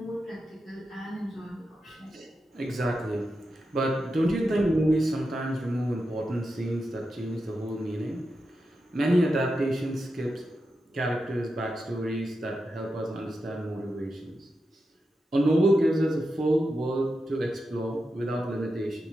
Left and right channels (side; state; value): both; normal; correlation 0.88